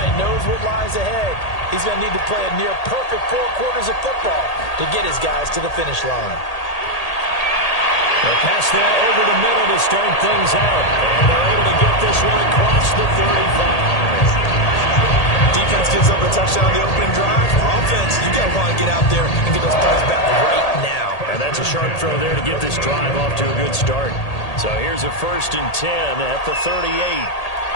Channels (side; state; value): right; late; 1.8 ms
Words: knows what lies ahead. He's going to need to play a near-perfect 4 quarters of football to get his guys to the finish line. They'll pass that over the middle to start things out. And they're able to get this one across the 35. Defense gives up a touchdown on the opening drive. Offense, you got to want to get out there and get those points back right now. And that's a sharp throw there to get this drive off to a good start. So here's a 1st and 10 at the 38.